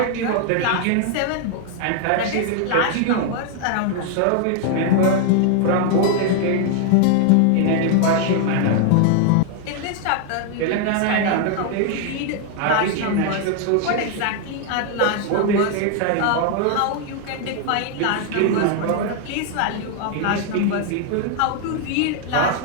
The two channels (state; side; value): different; both; correlation 0.00